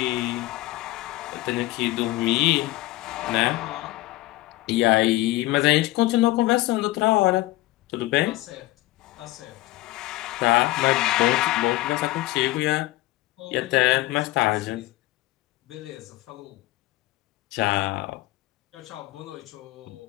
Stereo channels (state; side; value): quieter; right; 18.5 dB